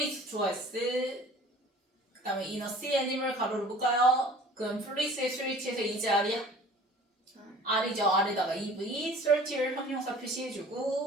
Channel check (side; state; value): both; normal; correlation 0.47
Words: 좋아했을 그 다음에 in a sea animal 가로를 묶어요. 그럼 fluids의 스위치에서 이제 R이야? R이죠. R에다가 EV, certier 형용사